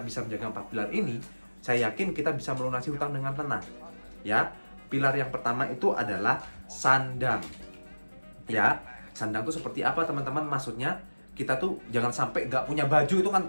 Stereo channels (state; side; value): inverted; both; correlation -1.00